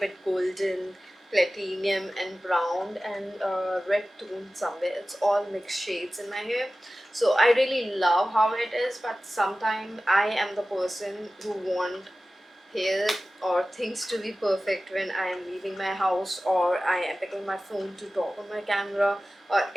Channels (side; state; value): both; normal; correlation 0.96